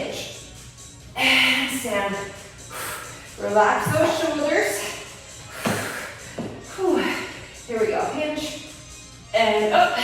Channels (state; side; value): identical; both; correlation 1.00